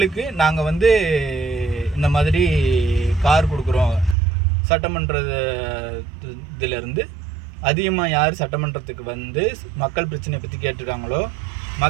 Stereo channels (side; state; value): left; drops out; at 4.2 s